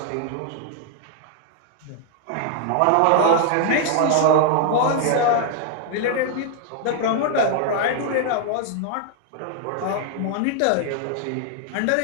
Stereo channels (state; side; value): different; both; correlation 0.00